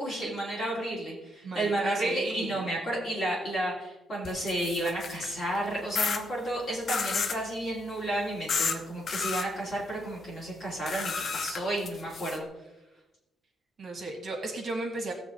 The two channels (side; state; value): both; normal; correlation 0.76